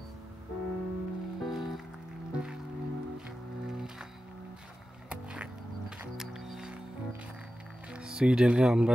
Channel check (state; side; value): normal; both; correlation 0.93